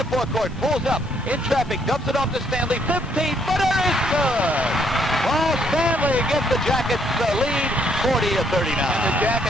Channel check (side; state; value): both; normal; correlation 0.70